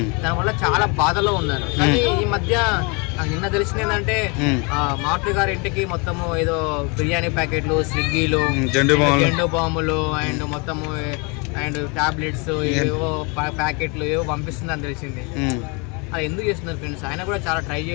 దానివల్ల చాలా బాధలో ఉన్నారు. కానీ ఈ మధ్య నాకు నిన్న తెలిసింది ఏంటంటే మారుతి గారి ఇంటికి మొత్తము ఏదో బిర్యానీ ప్యాకెట్లు, స్విగ్గీలు, జెండు బాంబులు అండ్ మొత్తము అండ్ టాబ్లెట్స్ ఏవో ప్యాకెట్లు ఏవో పంపిస్తుందని తెలిసింది. అది ఎందుకు చేస్తున్నారు ఫ్రెండ్స్? ఆయన కూడా చాలా ట్రై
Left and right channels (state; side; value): quieter; right; 31.3 dB